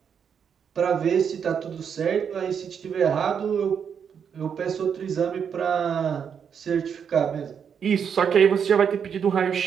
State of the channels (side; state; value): left; quieter; 7.4 dB